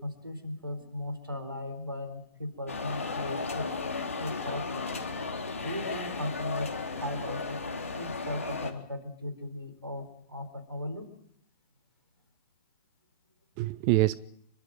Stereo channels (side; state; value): both; inverted; correlation -0.35